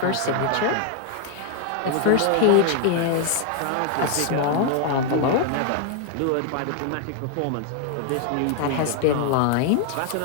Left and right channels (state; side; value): different; both; correlation 0.00